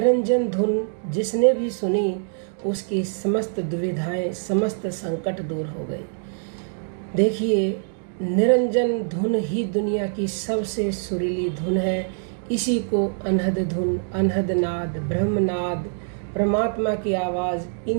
धुन जिसने भी सुनी उसकी समस्त दुविधाएं, समस्त संकट दूर हो गई। देखिए, निरंजन धुन ही दुनिया की सबसे सुरीली धुन है। इसी को अनहद धुन, अनहद नाद, ब्रह्मनाद, परमात्मा की आवाज़,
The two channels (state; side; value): silent; left; digital silence